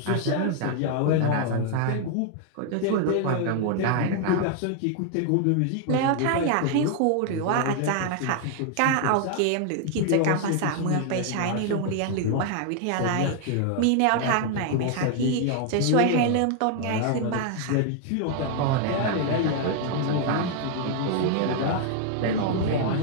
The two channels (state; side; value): different; both; correlation 0.00